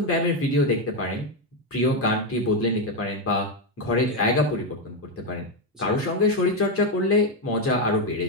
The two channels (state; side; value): normal; both; correlation 0.06